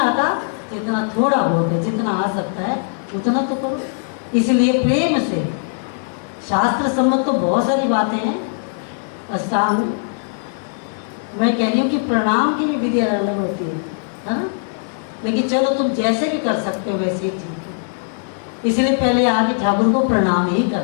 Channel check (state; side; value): silent; right; digital silence